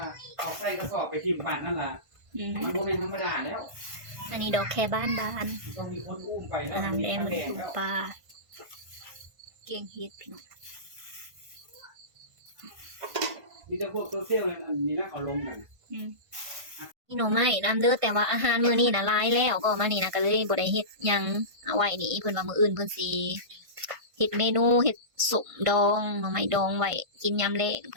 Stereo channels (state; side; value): late; left; 1.5 ms